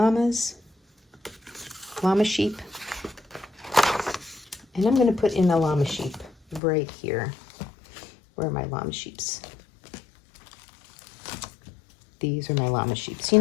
sheep. And I'm going to put in a llama sheep right here. Where are my llama sheeps? These are my llama sheeps, you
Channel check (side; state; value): right; drops out; at 6.6 s